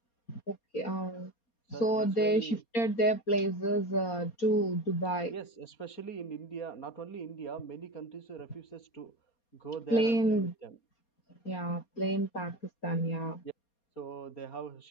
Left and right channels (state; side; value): late; right; 4.3 ms